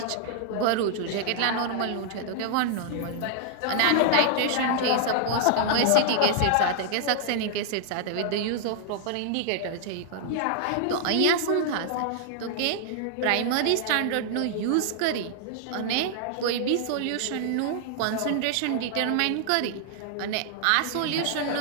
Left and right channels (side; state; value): both; different; correlation -0.01